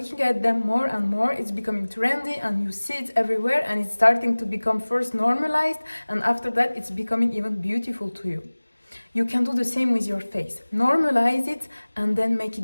at them more and more, it's becoming trendy and you see it everywhere, and it's starting to become first normalized, and after that it's becoming even beautiful to you. You can do the same with your face. Normalize it and then make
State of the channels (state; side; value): inverted; both; correlation -1.00